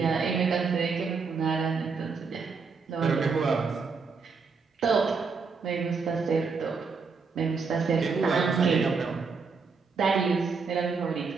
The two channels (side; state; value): left; quieter; 5.0 dB